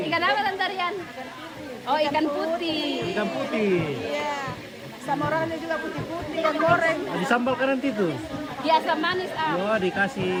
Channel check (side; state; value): both; identical; correlation 1.00